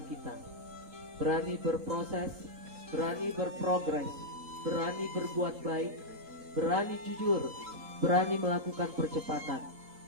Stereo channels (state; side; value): late; left; 3.9 ms